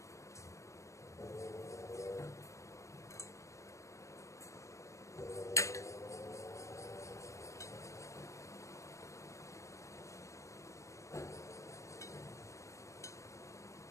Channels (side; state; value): right; late; 0.15 ms